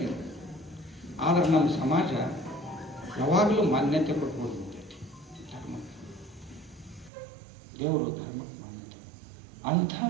ಆದ್ರೆ ನಮ್ಮ ಸಮಾಜ ಯಾವಾಗಲೂ ಮಾನ್ಯತೆ ಕೊಟ್ಕೊಂಡು ನಿಂತೈತಿ ಧರ್ಮ, ದೇವರು ಧರ್ಮಕ್ಕೆ ಮಾನ್ಯತೆ. ಅಂಥ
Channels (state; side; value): drops out; left; at 7.1 s